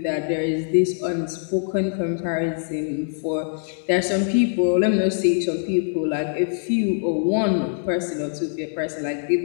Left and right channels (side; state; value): right; silent; 63 dB below the other